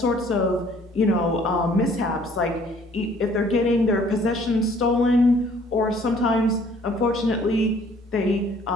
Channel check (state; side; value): normal; both; correlation 0.58